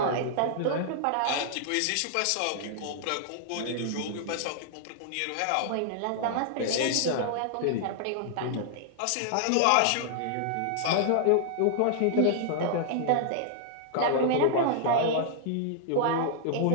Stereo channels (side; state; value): both; different; correlation -0.01